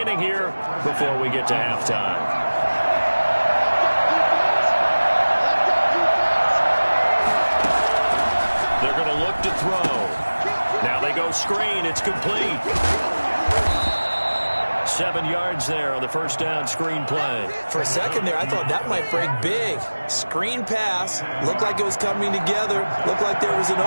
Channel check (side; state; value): both; inverted; correlation -1.00